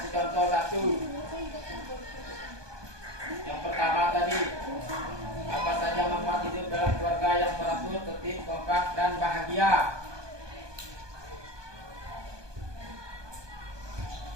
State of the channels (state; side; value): late; left; 1.2 ms